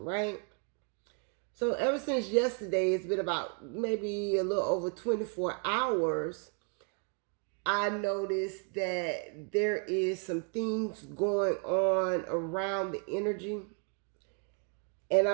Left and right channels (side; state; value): left; quieter; 39.4 dB